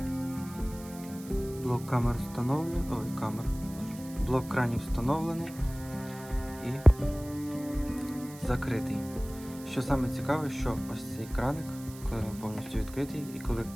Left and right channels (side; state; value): right; noise; hiss, 18 dB below the sound